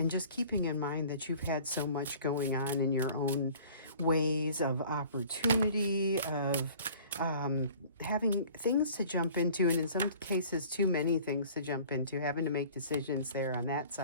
just keeping in mind that you've had so much going on in your own ways of opportunity, of having things to jump into, and in some cases too many things to jump into, having to make decisions there on that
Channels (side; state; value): both; inverted; correlation -0.49